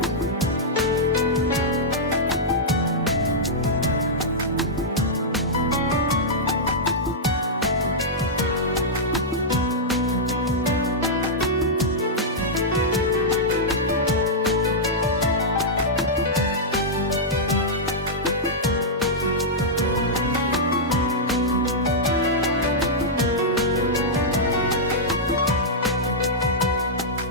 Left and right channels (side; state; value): both; normal; correlation -0.09